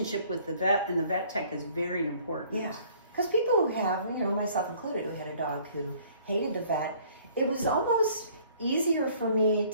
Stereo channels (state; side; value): inverted; both; correlation -0.57